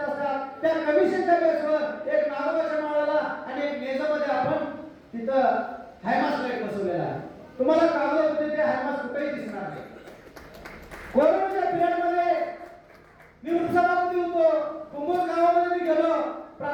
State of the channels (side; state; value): both; identical; correlation 1.00